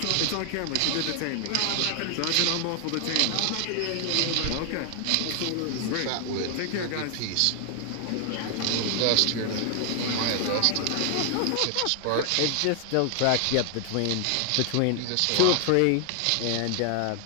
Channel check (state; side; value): different; both; correlation 0.00